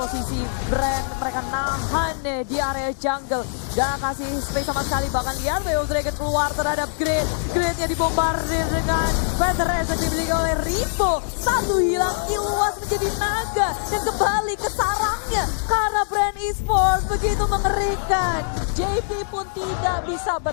brand. Mereka nahan deh di area jungle. Gak kasih space sama sekali. Bahkan lihat Way of Dragon keluar terhadap Grid. Gridnya dibombardir dengan Featheress yang dimiliki oleh Ripo. Satu hilang, Iluas menjadi naga. Dan kembali ke sarangnya. Karena brand Esports begitu mengerikan. JP pun tidak bisa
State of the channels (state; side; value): silent; right; digital silence